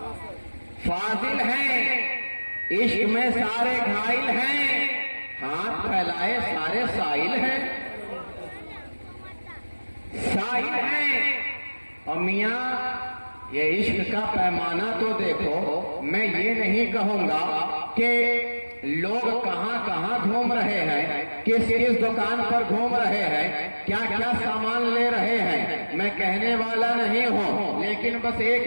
فاضل ہیں، عشق میں سارے گھائل ہیں، ہاتھ پھیلائے سارے سائل ہیں، سائل ہیں۔ اور میاں یہ عشق کا پیمانہ تو دیکھو، میں یہ نہیں کہوں گا کہ لوگ کہاں کہاں گھوم رہے ہیں، کس کس دکان پر گھوم رہے ہیں، کیا کیا سامان لے رہے ہیں، میں کہنے والا نہیں ہوں، لیکن بس ایک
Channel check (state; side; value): inverted; both; correlation -1.00